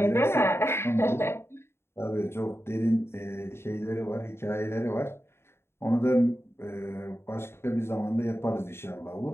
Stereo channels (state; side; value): late; right; 0.12 ms